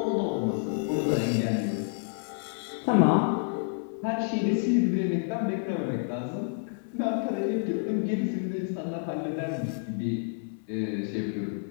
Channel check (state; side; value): silent; right; 59 dB below the other